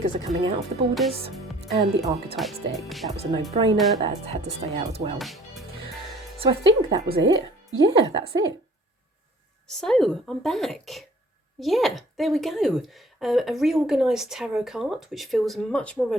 are coming out of the borders. And the Archetypes deck. That was a no-brainer. That had to stay out as well. So I think that was it. Yeah, that's it. So I'm back. Yeah, there we go. A reorganised tarot card, which feels much more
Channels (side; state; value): both; normal; correlation 0.54